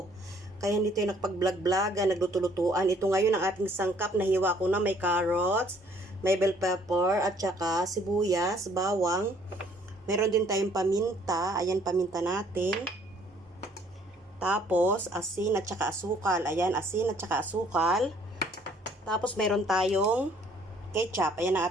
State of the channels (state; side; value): normal; both; correlation 0.60